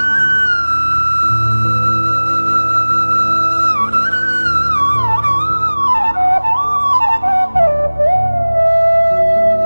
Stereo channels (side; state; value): both; inverted; correlation -1.00